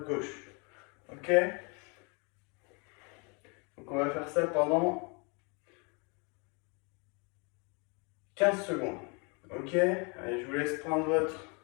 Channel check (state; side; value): quieter; right; 32.9 dB